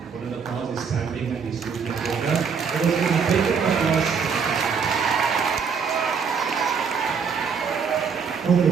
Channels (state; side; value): quieter; left; 6.1 dB